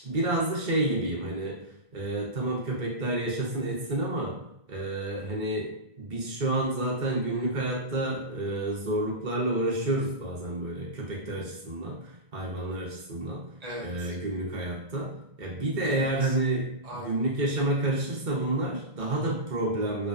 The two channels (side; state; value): left; late; 1.6 ms